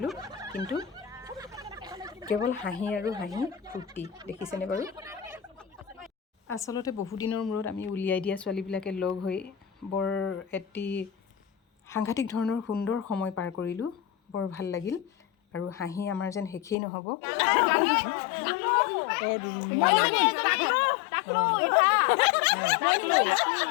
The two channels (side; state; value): right; drops out; at 16.8 s